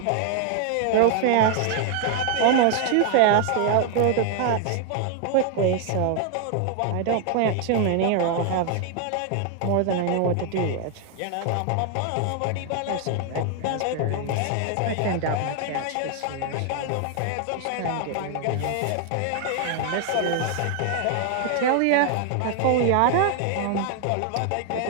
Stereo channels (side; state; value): both; different; correlation 0.00